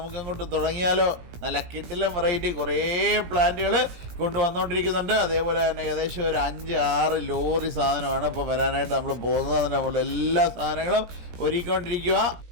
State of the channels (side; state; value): left; late; 17 ms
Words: തുടങ്ങിയാലോ. നല്ല കിടിലൻ വെറൈറ്റി കുറേ പ്ലാന്റുകൾ കൊണ്ടുവന്നുകൊണ്ടിരിക്കുന്നുണ്ട്. അതേപോലെ തന്നെ ഏകദേശം ഒരു 5-6 ലോറി സാധനമാണ് ഇപ്പോൾ വരാനായിട്ട് നമ്മൾ പോകുന്നത്. നമ്മൾ എല്ലാ സാധനങ്ങളും ഒരുക്കിക്കൊണ്ടിരിക്കുക.